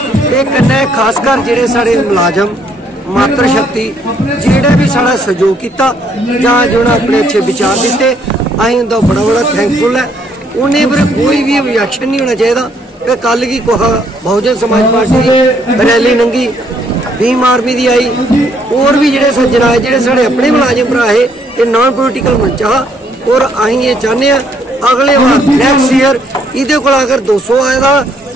ये कन्नै खासकर जेडे साढ़े मुलाजम मात्र शक्ति जेड़ा भी साड़ा सहयोग किया जो अपने अच्छे विचार दिते, अं उनका बड़ा बड़ा थैंकफुल है। उन्हें फिर कोई भी ऑब्जेक्शन नहीं होना चाहिए। कल की बहुजन समाज पार्टी रैली लंघी, भीम आर्मी की आई, और भी जोड़े सज्जन आए जोड़े साढ़े अपने मुलाजिम भरा है, ये नॉन पोलिटिकल मंच हा। और अं ये चाहते हैं अगले बार नैक्सट ईयर ये अगर 200 आएगा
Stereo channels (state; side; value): normal; both; correlation 0.68